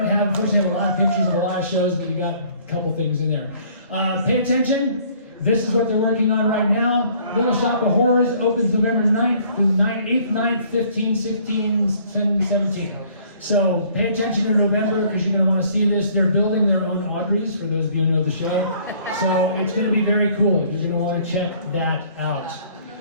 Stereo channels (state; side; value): inverted; both; correlation -0.58